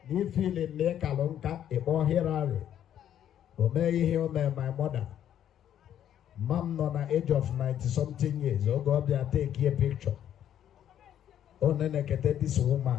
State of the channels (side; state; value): right; quieter; 10.4 dB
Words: you feel in make a long cut a more here. May hear my mother. Mom on the age of 90-something years. Oh God, they take a picture. Oh, then I get this